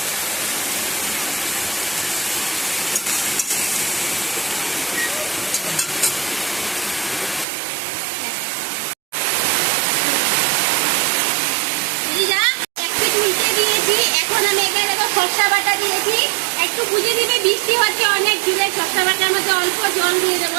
এখন আমি এখানে দেখো সর্ষা বাটা দিয়েছি, একটু বুঝে দিবে, বৃষ্টি হচ্ছে অনেক জুড়ে। সর্ষা বাটার মধ্যে অল্প জল দিয়ে দেবো,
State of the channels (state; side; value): drops out; left; at 7.5 s